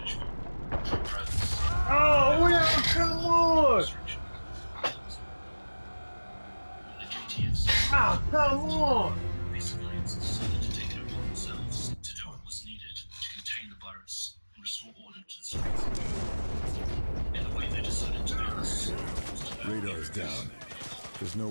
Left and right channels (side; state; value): both; inverted; correlation -1.00